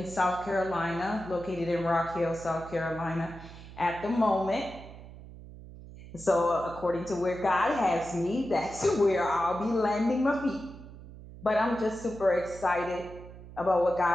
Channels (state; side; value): noise; right; hum, 16 dB below the sound